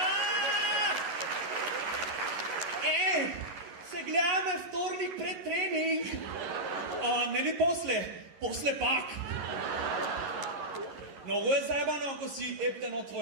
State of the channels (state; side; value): late; left; 11 ms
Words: Се гледаме вторник пред тренинг. Нели после? После пак. Много е заебано ако си ептен